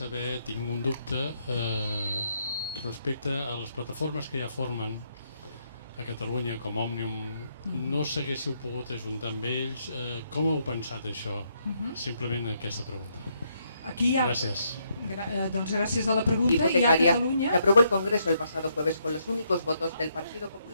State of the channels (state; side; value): inverted; both; correlation -0.75